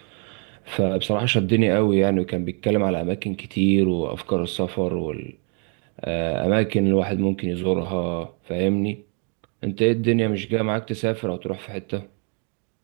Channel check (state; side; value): quieter; left; 38.5 dB